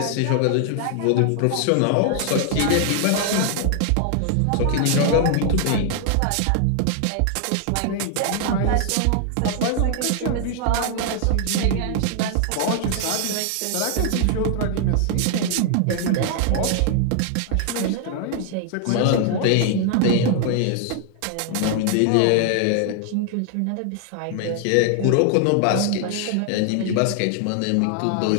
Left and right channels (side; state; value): both; different; correlation 0.00